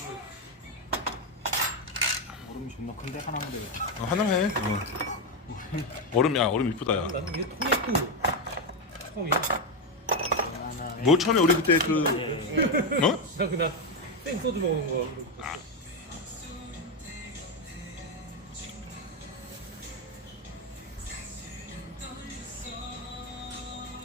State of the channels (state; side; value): normal; both; correlation 0.07